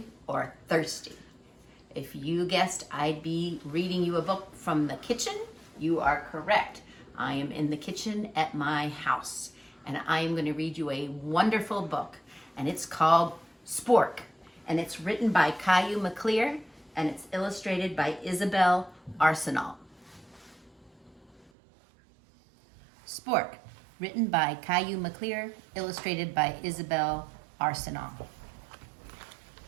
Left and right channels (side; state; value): left; drops out; at 21.5 s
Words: or thirsty. If you guessed I'd be reading you a book from the kitchen, you are correct. I am in the kitchen at my house, and I am going to read you a wonderful book, and it's called Spork, and it's written by Caillou McClear, and it's illustrated by Isabel Arsenal. Spork, written by Caillou McClear, illustrated by Isabel Arsenal.